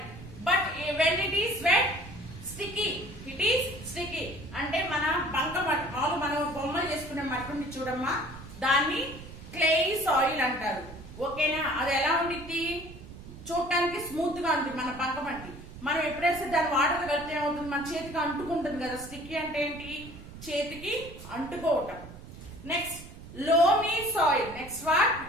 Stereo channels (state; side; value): noise; right; rumble, 15 dB below the sound